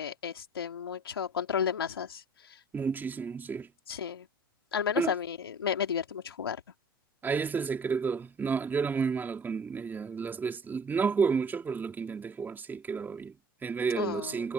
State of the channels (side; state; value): both; normal; correlation 0.49